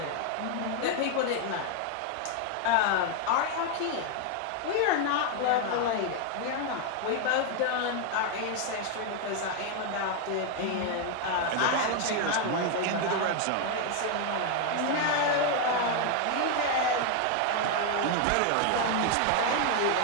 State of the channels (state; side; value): different; both; correlation 0.01